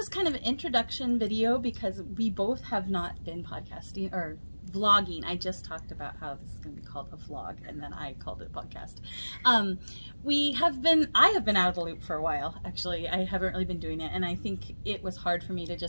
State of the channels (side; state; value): both; inverted; correlation -1.00